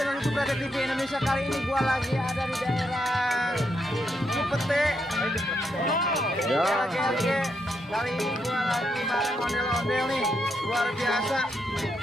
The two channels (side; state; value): both; normal; correlation 0.79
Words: Subscriber TV Indonesia. Kali ini gua lagi ada di daerah Cipete. Ya. Oke. Kali ini gua lagi bareng ondel-ondel nih, luar biasa.